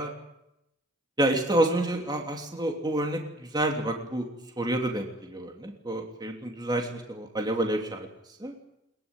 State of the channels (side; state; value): both; normal; correlation 0.52